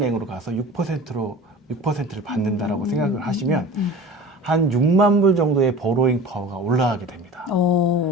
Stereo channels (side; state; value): both; normal; correlation 0.38